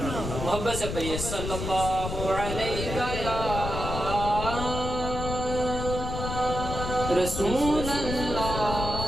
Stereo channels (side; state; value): left; noise; rumble, 5 dB below the sound